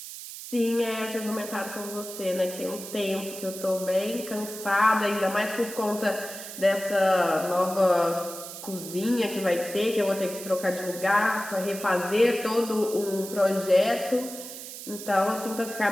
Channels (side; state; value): right; noise; hiss, 11 dB below the sound